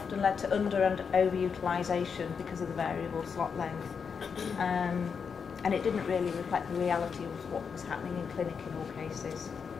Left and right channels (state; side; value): quieter; right; 6.2 dB